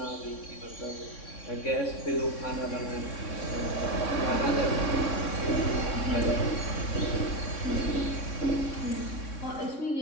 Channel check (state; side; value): late; right; 3.6 ms